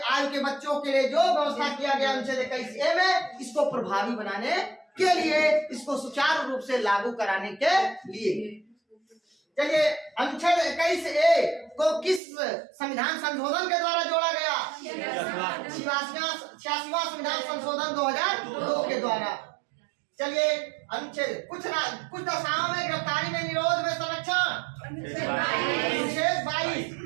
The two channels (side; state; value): left; drops out; at 12.2 s